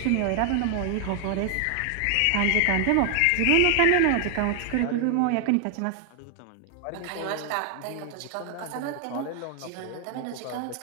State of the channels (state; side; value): different; both; correlation 0.00